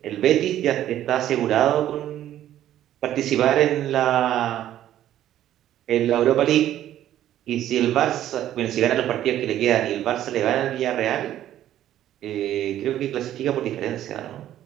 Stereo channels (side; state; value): left; quieter; 12.2 dB